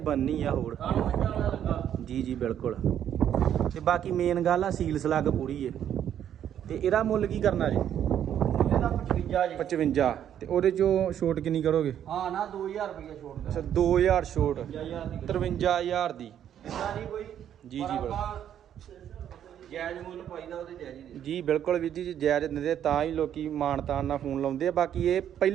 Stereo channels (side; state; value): left; quieter; 10.0 dB